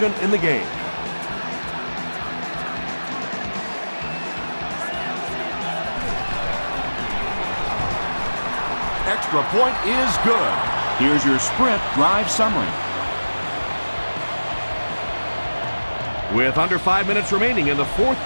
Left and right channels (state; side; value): inverted; both; correlation -1.00